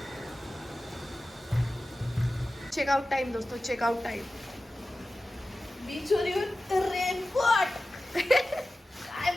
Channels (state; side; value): normal; both; correlation 0.95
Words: चेकआउट टाइम दोस्तों, चेकआउट टाइम. बीचवर येऊन रेनकोट.